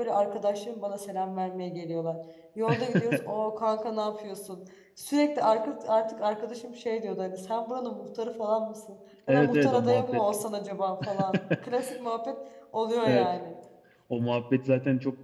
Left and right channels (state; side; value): identical; both; correlation 1.00